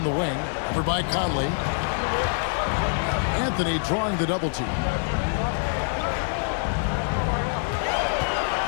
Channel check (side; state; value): right; silent; 62 dB below the other